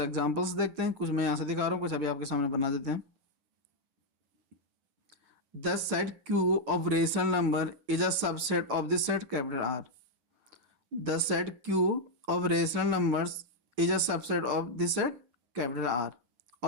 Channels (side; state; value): left; late; 8.2 ms